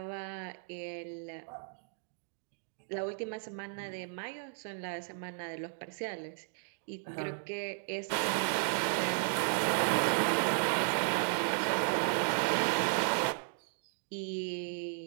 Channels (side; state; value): left; silent; digital silence